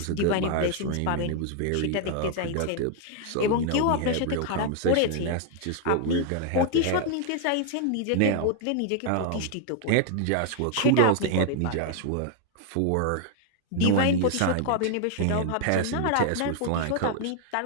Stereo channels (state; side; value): different; both; correlation 0.00